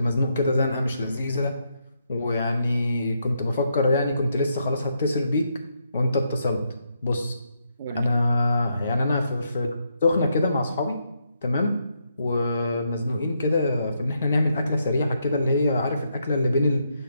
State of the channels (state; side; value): inverted; both; correlation -0.79